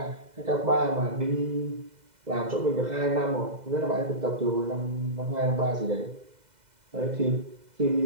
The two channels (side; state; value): left; late; 2.0 ms